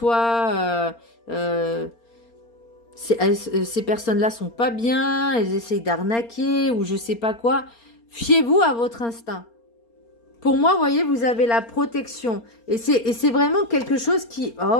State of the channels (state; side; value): late; right; 4.3 ms